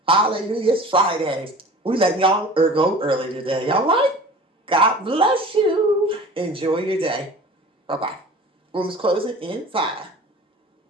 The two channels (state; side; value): normal; both; correlation 0.41